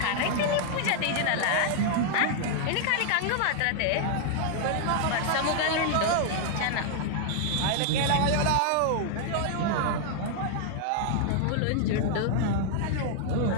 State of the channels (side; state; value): both; different; correlation 0.00